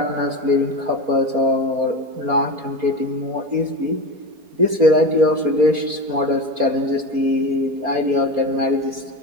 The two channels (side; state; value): left; late; 4.3 ms